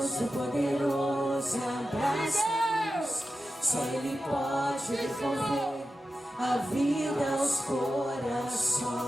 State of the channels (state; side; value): normal; both; correlation 0.92